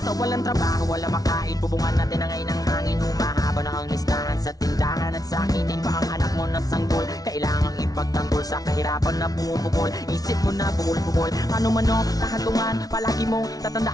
Walang trabaho, wala makain, bubungan natin ang ngayon ng hangin. Humahaba na ang listahan sa tindahan at sakitin pa ang anak mo na sanggol. Kailangang ipagtanggol sa kahirapan na bumubukol. Isip mo na bukol-bukol, ano man o kahantungan, palagi mong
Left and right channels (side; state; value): right; late; 0.18 ms